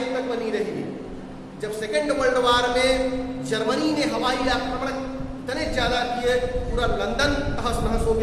तक बनी रही, जब सेकेंड वर्ल्ड वार में जर्मनी ने हवाई आक्रमण इतने ज्यादा किए, पूरा लंदन तहस नहस हो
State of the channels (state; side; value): identical; both; correlation 1.00